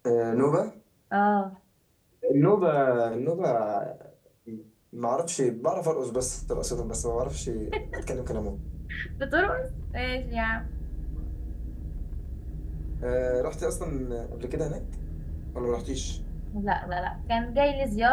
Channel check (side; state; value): both; identical; correlation 1.00